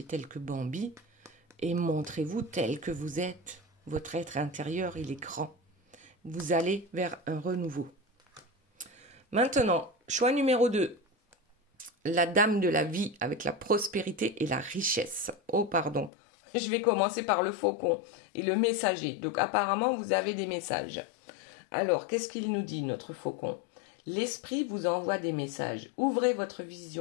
tels que Bambi et montrez-vous tel que vous êtes. Votre être intérieur, il est grand. Vous allez vers un renouveau. Maintenant, choix numéro 2. La dame de la vie avec la prospérité et la richesse. Oh, pardon. Je vais commencer par le faucon et le messager. Donc, apparemment, vous avez des messages. Alors, qu'est-ce qu'il nous dit, notre faucon? L'esprit vous envoie des messages. Ouvrez votre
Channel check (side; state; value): right; drops out; at 16.1 s